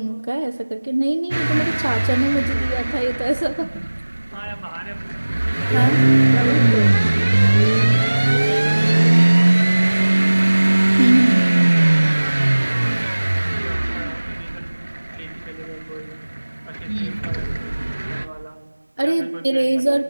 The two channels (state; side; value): inverted; both; correlation -1.00